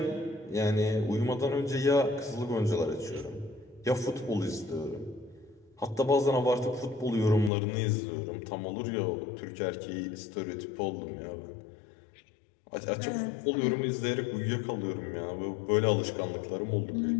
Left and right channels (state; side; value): drops out; right; at 7.5 s